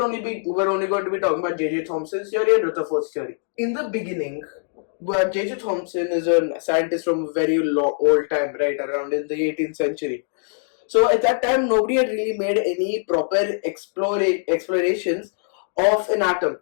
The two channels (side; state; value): right; silent; digital silence